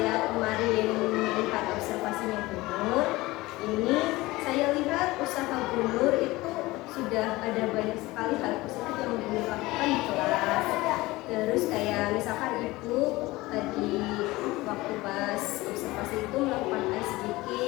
kemarin melihat observasinya Bu Nur, ini saya lihat usaha Bu Nur itu sudah ada banyak sekali hal positif yang Bu Nur lakukan di kelas. Terus kayak misalkan Ibu tadi waktu pas observasi itu melakukan ice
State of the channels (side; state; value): right; quieter; 19.9 dB